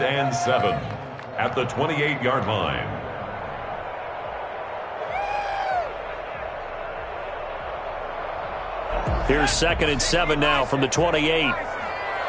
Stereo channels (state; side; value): identical; both; correlation 1.00